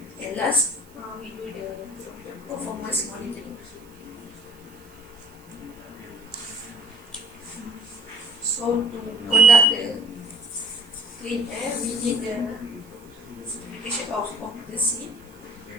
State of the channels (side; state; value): right; noise; hiss, 27 dB below the sound